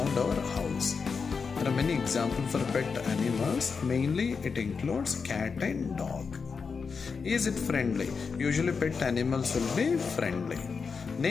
our house. There are many examples for pet animals. Mainly it includes cat and dog. Is it friendly? Usually pet animals will be friendly.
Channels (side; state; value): right; quieter; 5.3 dB